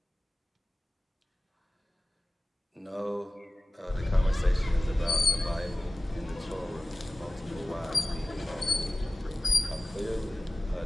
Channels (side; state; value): both; normal; correlation 0.96